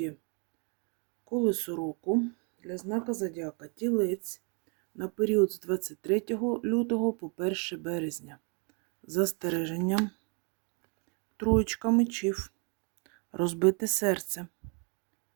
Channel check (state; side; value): quieter; left; 36.7 dB